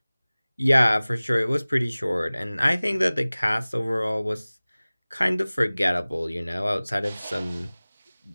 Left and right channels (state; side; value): inverted; both; correlation -0.99